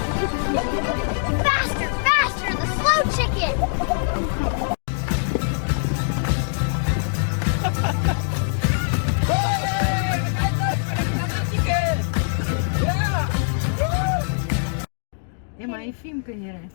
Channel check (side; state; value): right; silent; digital silence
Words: Faster, faster, the slow chicken! הם עייפים כנראה.